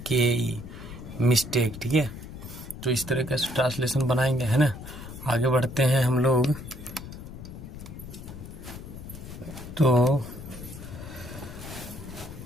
mistake, ठीक है। तो इस तरह का ट्रांसलेशन बनाएंगे, है ना। आगे बढ़ते हैं हम लोग। तो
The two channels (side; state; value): left; noise; rumble, 12 dB below the sound